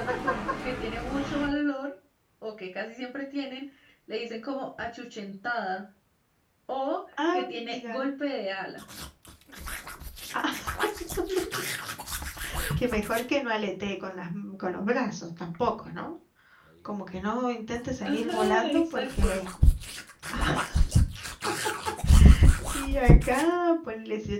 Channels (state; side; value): identical; both; correlation 1.00